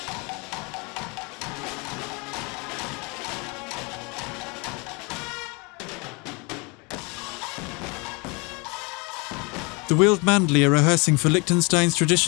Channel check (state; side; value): quieter; right; 29.4 dB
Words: The Wildmandli are rehearsing for Liechtenstein's